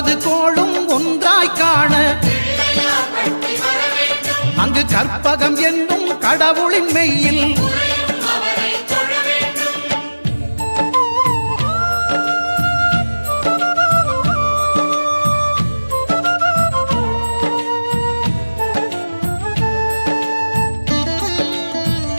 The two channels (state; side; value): inverted; both; correlation -1.00